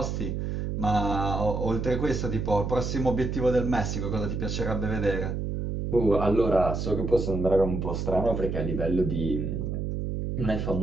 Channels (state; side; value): noise; right; hum, 2 dB below the sound